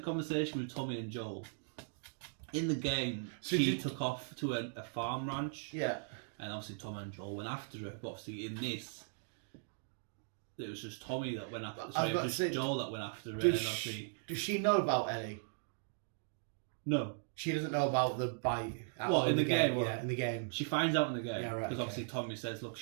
conversation with Tommy and Joel in the game, she took off to a farm ranch. Yeah, and obviously Tommy and Joel went after her. But obviously in this, it was just Tommy that went after. Sorry, it was just Joel that went after her. And obviously, does she know about Ellie? No. She doesn't know about the bite. Well, in the game. Yeah, in the game. She finds out in the game. Yeah, right. Because obviously Tommy says, look,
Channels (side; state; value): left; silent; digital silence